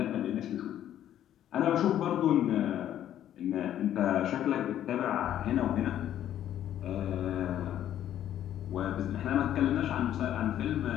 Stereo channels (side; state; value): right; quieter; 11.3 dB